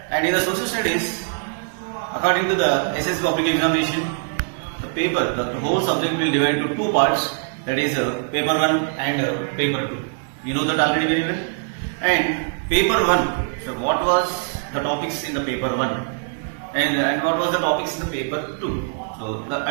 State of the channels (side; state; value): left; silent; digital silence